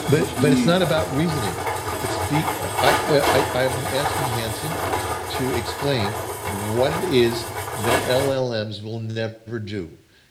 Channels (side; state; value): both; identical; correlation 1.00